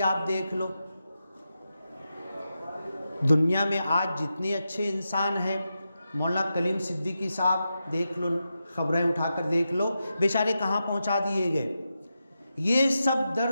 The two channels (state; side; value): inverted; both; correlation -0.89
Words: आप देख लो, दुनिया में आज जितने अच्छे इंसान हैं, मौलाना कलीम सिद्दीकी साहब देख लो, खबरें उठाकर देख लो, बेचारे कहाँ पहुँचा दिए गए। ये सब